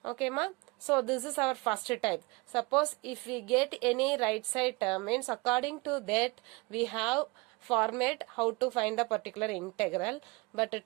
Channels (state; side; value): quieter; left; 26.0 dB